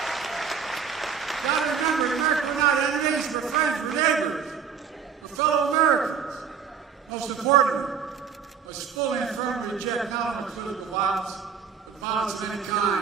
gotta remember, America went out of enemies, we're friends, we're neighbors, we're fellow Americans. Most important, let's fully and firmly reject not only political violence, but violence of any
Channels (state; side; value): quieter; left; 6.8 dB